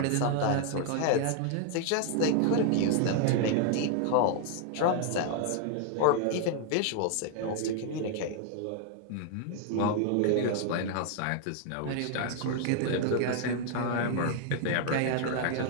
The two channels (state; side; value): different; both; correlation 0.00